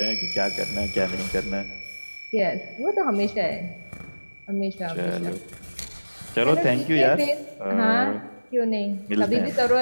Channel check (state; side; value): inverted; both; correlation -1.00